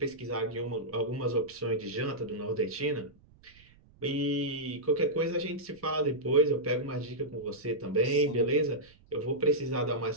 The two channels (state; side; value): noise; right; rumble, 27 dB below the sound